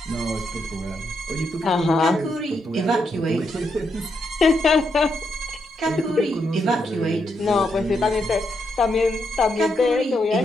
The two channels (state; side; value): normal; both; correlation 0.80